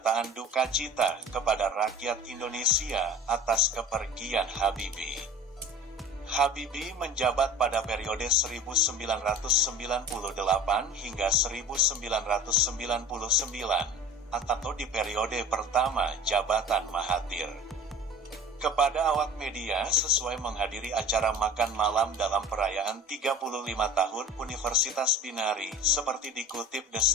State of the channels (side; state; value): both; normal; correlation 0.40